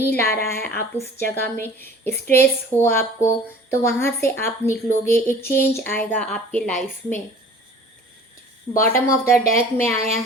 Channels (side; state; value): both; normal; correlation 0.47